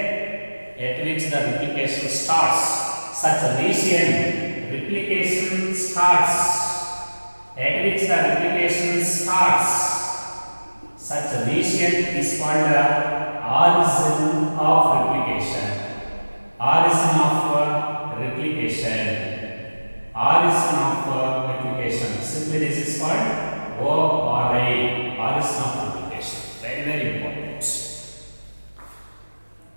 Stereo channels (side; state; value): both; inverted; correlation -1.00